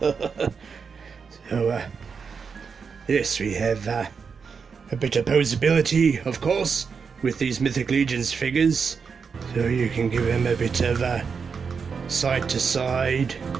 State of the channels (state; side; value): quieter; left; 5.7 dB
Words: So yes, we have a bit of posability, of course, with these Mythic Legions figures, so you can give them a bit of side to side